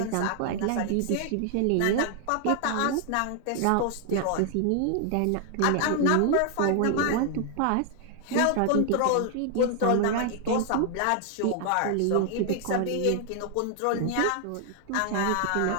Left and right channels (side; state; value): both; different; correlation 0.00